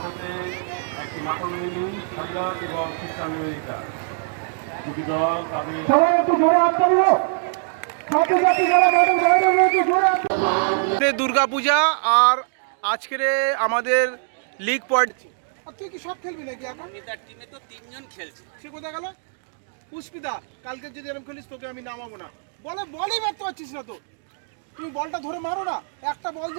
একটি নাটমিনী সারিয়া এবং খ্রিস্টান আমেরিকা। দুটি দল তাদের দুর্গাপূজা আর আজকের আমাদের লিগ পয়েন্ট। তুই কি সব খেলবি নাকি এখন? তার টিমে তো তিনজন খেলছে। সে কোথায় গেল? পুষ্পিতা, কালকে যদি এরকম খেলিস তোকে আমি নামাবো না। বলই মারতে পারছিস না তো। তুমি বলটা ধরে মারো না। একটা বল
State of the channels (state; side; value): silent; left; digital silence